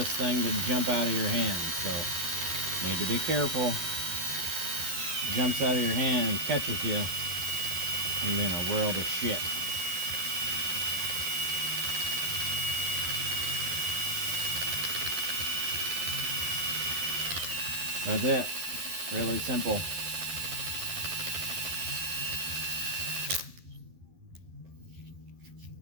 thing to jump out of your hand, so you need to be careful. If it jumps out of your hand and catches you, you're in a world of shit. That's it. Really simple.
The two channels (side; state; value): left; late; 11 ms